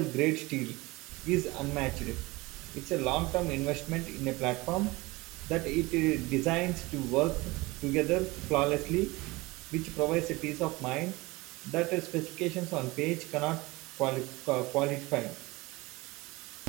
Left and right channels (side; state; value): left; quieter; 22.4 dB